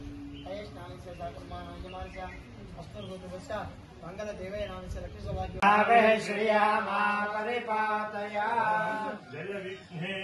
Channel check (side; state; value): both; identical; correlation 1.00